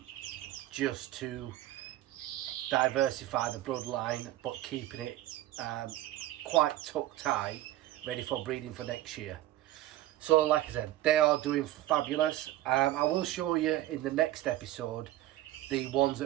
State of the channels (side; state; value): left; quieter; 15.0 dB